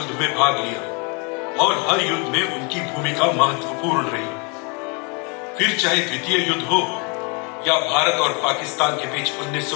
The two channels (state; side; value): quieter; right; 33.5 dB